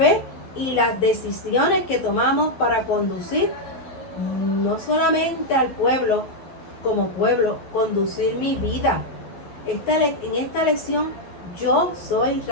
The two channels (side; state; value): right; late; 12 ms